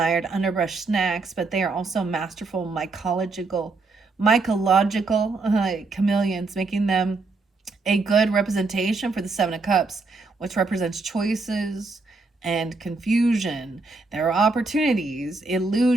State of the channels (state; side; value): quieter; left; 3.8 dB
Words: underbrush snacks, but they are also masterful mycological chameleons, making them a good representation for the Seven of Cups, which represents choices and confusion. There are opportunities,